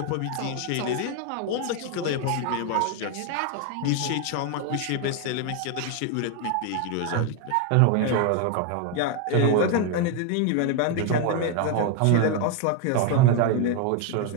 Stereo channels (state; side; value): different; both; correlation 0.01